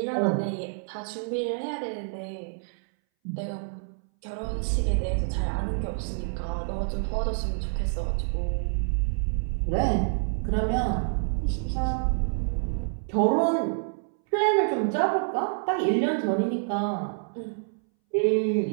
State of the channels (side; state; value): left; silent; 60 dB below the other